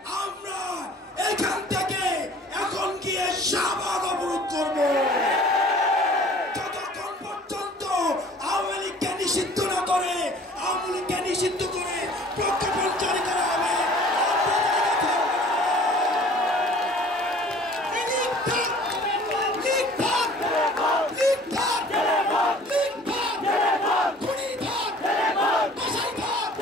আমরা এখান থেকে এখন গিয়ে শাহবাগ অবরোধ করবো যতক্ষণ পর্যন্ত আওয়ামী লীগকে নিষিদ্ধ না করে, আওয়ামী লীগকে নিষিদ্ধ করে প্রজ্ঞাপন জারি করা হবে।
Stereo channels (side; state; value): both; normal; correlation 0.49